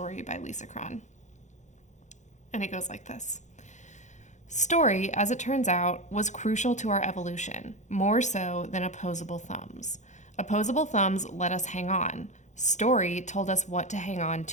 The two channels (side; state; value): right; late; 0.35 ms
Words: by Lisa Cron. And it goes like this. Story, as it turns out, was crucial to our evolution, more so than opposable thumbs. Opposable thumbs let us hang on. Story told us what to hang on